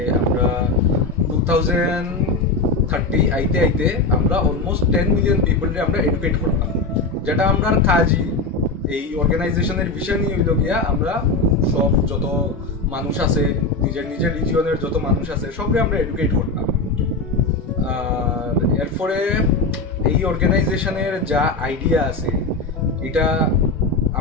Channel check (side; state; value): right; quieter; 3.6 dB